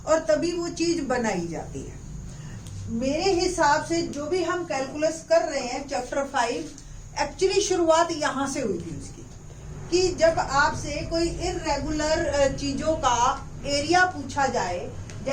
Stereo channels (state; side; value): identical; both; correlation 1.00